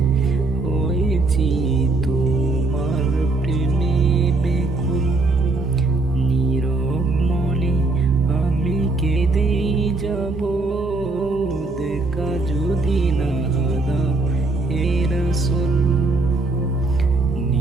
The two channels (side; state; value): left; quieter; 3.3 dB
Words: হয়েছি তোমার প্রেমে বেকুল, নীরব মনে আমি কেঁদে যাব, দেখা যদি না দাও হে রাসূল।